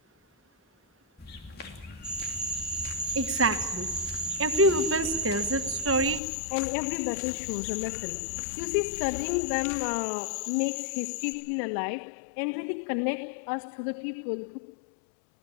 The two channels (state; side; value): drops out; right; at 6.2 s